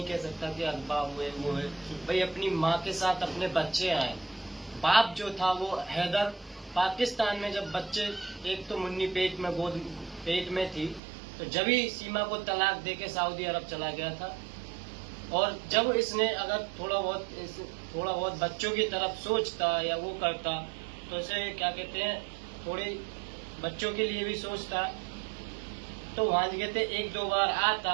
कह सकता कि अगवा हुए वो है। भाई अपनी माँ के साथ अपने बच्चे आए। बाप जो था वो हैदर पाकिस्तान में, जब बच्चे, एक तो मुन्नी पेट में थी, तो जब ही सीमा को तलाक देके सऊदी अरब चला गया था। और जब इसने अगर थोड़ा बहुत बच्चों की तरफ सोचता या वो करता, तो इसे क्या कहते हैं, थोड़ी बच्चों के लिए भी सोचता, तो वहाँ कहते 1-2 बार आता,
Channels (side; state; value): left; drops out; at 11.0 s